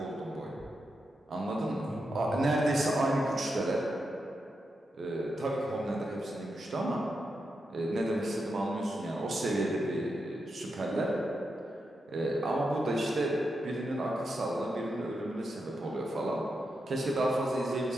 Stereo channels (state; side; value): normal; both; correlation 0.86